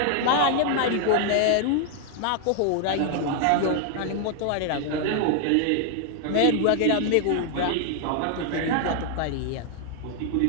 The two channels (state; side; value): different; both; correlation 0.00